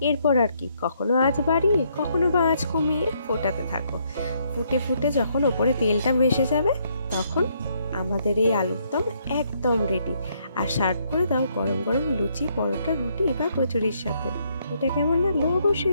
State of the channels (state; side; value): inverted; both; correlation -0.72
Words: এরপর আর কি, কখনো আঁচ বাড়িয়ে কখনো বা আঁচ কমিয়ে ফোটাতে থাকো। ফুটে ফুটে যখন ওপরে তেলটা ভেসে যাবে, তখন আমাদের এই আলুর দম একদম রেডি। আর সার্ভ করে দাও গরম গরম লুচি, পরোটা, রুটি বা কচুরির সাথে। এটা কেমন লাগলো